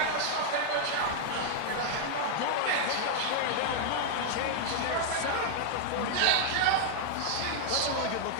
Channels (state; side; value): different; both; correlation 0.00